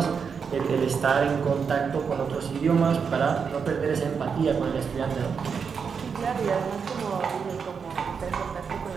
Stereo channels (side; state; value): left; quieter; 6.2 dB